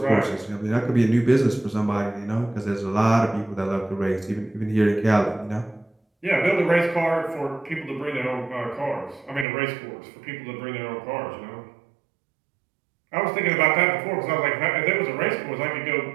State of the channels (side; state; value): left; drops out; at 9.5 s